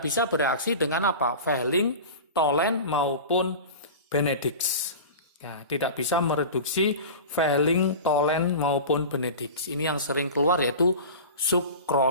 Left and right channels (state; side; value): inverted; both; correlation -0.33